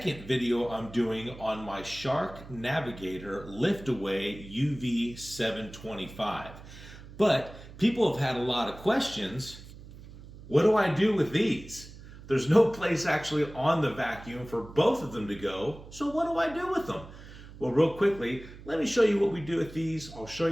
video I'm doing on my Shark Navigator lift-away UV725. But people have had a lot of questions. What do I do with these? There's no place actually on the vacuum for both of them to go, so what do I do with them? Well, real quickly, let me show you what we do with these. I'll show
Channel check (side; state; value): right; noise; hum, 17 dB below the sound